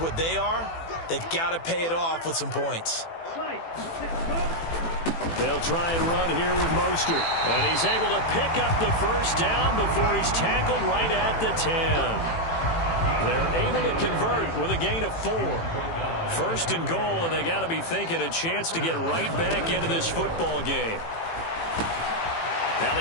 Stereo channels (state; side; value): late; right; 18 ms